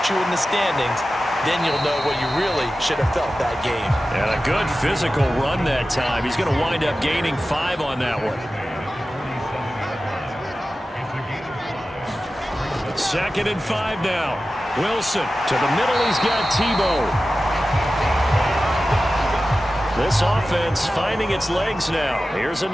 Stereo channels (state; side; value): normal; both; correlation 0.94